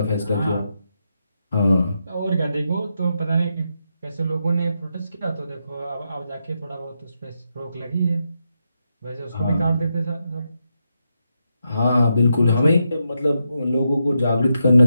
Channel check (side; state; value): both; inverted; correlation -0.84